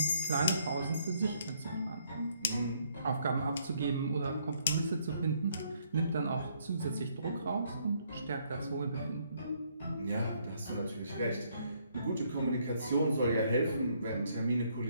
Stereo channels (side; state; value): both; inverted; correlation -0.69